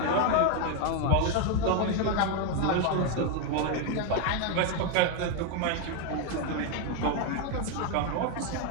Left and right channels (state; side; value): different; both; correlation 0.01